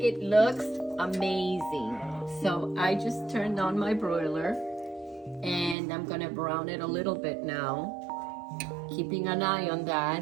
It looks amazing. So I just turned on my broiler and I'm gonna brown it a little bit now. Keeping an eye on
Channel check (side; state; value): left; drops out; at 5.8 s